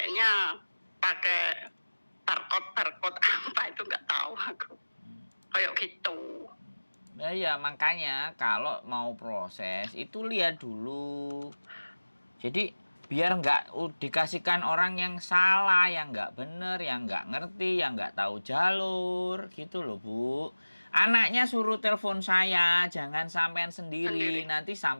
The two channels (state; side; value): inverted; both; correlation -1.00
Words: pakai barcode apa itu nggak tahu aku. Kayak gitu. Nah ya makanya kalau mau proses itu lihat dulu. Jadi biar nggak dikasihkan orang yang salah, yang nggak bener, yang nggak ngerti, yang nggak tahu jalur, gitu loh Bu. Anaknya suruh telepon saya, jangan sampean sendiri. Nanti